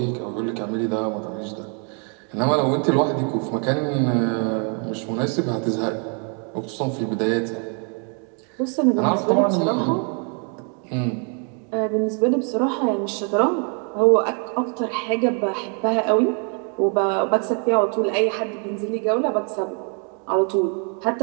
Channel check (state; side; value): quieter; left; 39.9 dB